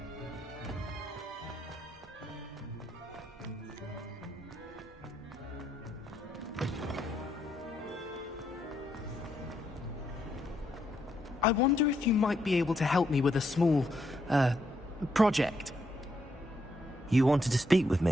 I wonder if you might be able to help me with a small, project. You wanted to speak with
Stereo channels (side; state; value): both; normal; correlation 0.76